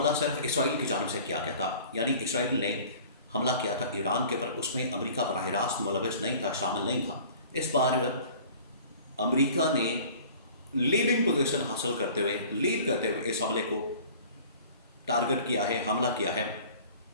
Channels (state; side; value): inverted; both; correlation -0.46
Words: सिर्फ इसराइल की जानिब से किया गया था, यानी इसराइल ने हमला किया था ईरान के ऊपर, उसमें अमेरिका बराह रास्त मुलविस नहीं था, शामिल नहीं था। इस बार अमेरिका ने लीडिंग पोजीशन हासिल करते हुए, लीड करते हुए इस हमले को टारगेट किया है, हमला किया है